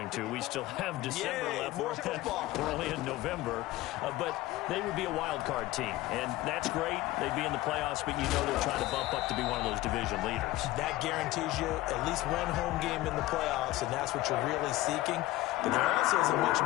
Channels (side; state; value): right; quieter; 17.0 dB